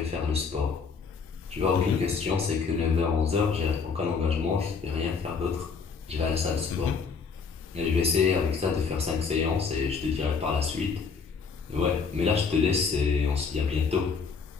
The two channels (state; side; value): quieter; right; 5.4 dB